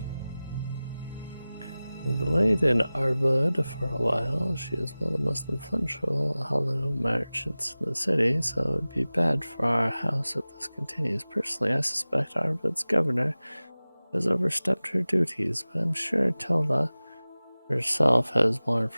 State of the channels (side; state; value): both; inverted; correlation -0.98